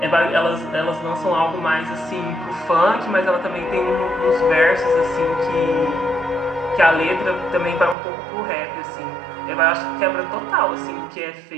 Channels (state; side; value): drops out; left; at 8.0 s